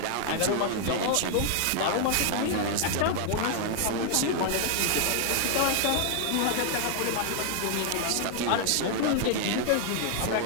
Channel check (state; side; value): different; both; correlation 0.00